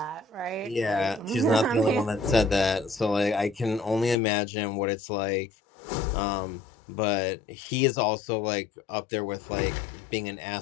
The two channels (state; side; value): drops out; right; at 4.2 s